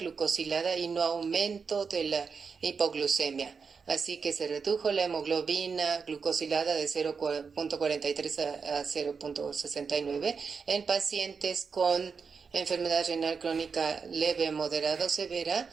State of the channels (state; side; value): quieter; left; 5.5 dB